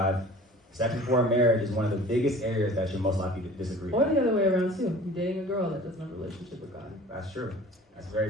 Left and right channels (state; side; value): normal; both; correlation 0.45